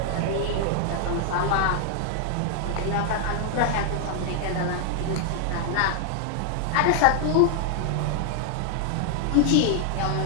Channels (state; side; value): different; both; correlation 0.00